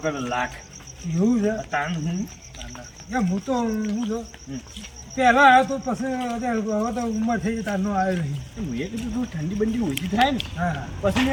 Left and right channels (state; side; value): identical; both; correlation 1.00